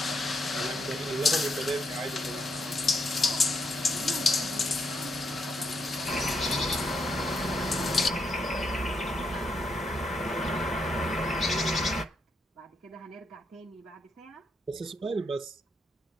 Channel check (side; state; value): both; normal; correlation 0.78